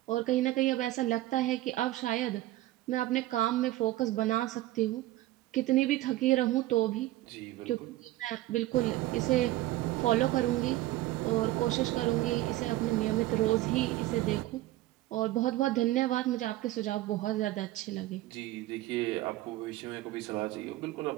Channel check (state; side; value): quieter; left; 16.3 dB